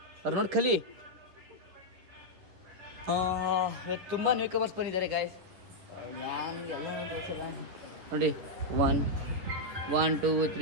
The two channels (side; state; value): left; late; 11 ms